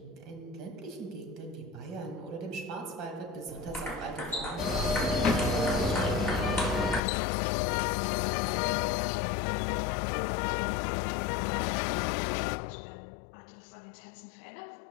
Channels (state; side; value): drops out; right; at 7.0 s